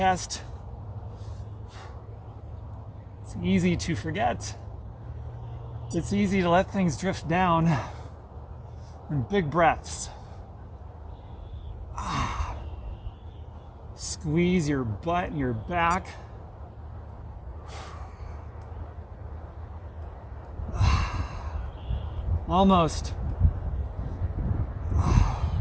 It's easy to forget. It's easy to let things drift down in big breaths. Squeeze your butt and your back. Almost.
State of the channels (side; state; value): both; identical; correlation 1.00